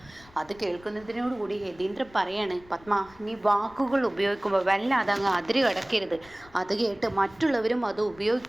അത് കേൾക്കുന്നതിനോടുകൂടി യതീന്ദ്രൻ പറയാണ്, പത്മ നീ വാക്കുകൾ ഉപയോഗിക്കുമ്പോൾ വല്ലാതെ അങ്ങ് അതിര് കടക്കരുത്. അത് കേട്ട് മറ്റുള്ളവരും അത്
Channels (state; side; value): noise; left; rumble, 24 dB below the sound